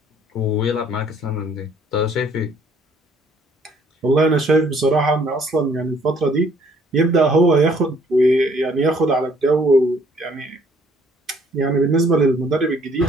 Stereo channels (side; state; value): both; normal; correlation 0.62